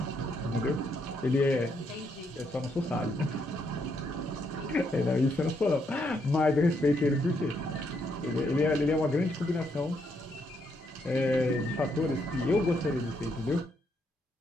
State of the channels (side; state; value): both; normal; correlation 0.76